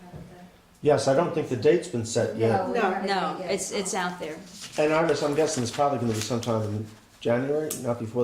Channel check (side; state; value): both; identical; correlation 1.00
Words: had at Yes, I don't think the date's been set yet. we No. haven't No, yet. it's out there. And Iris, I'm guessing it's probably going to be sometime in January, not